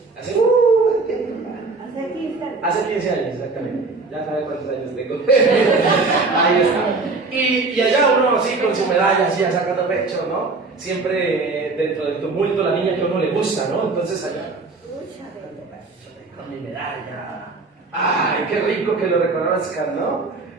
Hace 15 años, exactamente. Ya sabe cuántos años tengo. Ahí está. Y allá uno así con su medalla, así sacando pecho, ¿no? Siempre dentro del tumulto la niña que a uno le gusta, ¿no? Entonces allá, con mi medalla. ¡Ay, qué rico que lo reconozcan, ¿no?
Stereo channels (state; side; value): quieter; left; 3.8 dB